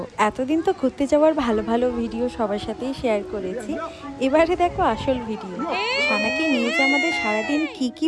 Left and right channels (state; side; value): identical; both; correlation 1.00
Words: এতদিন তো ঘুরতে যাওয়ার ভালো ভালো ভিডিও সবার সাথেই শেয়ার করেছি। এবারে দেখো আসল ভিডিও। সানাকে নিয়ে যে আমাদের সারাদিন